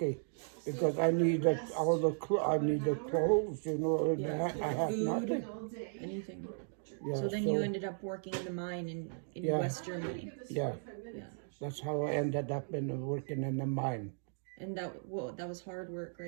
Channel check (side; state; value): left; silent; digital silence